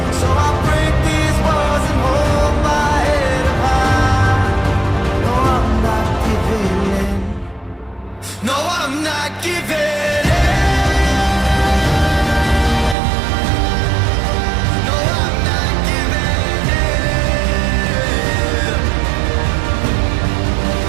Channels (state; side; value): drops out; left; at 13.0 s